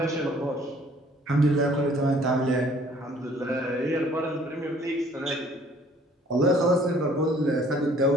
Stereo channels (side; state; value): both; normal; correlation 0.57